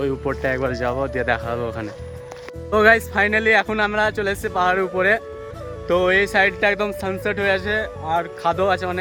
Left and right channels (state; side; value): identical; both; correlation 1.00